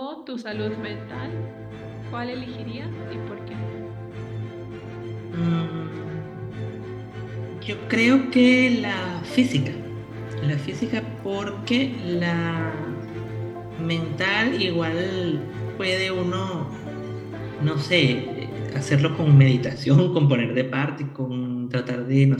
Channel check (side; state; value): both; identical; correlation 1.00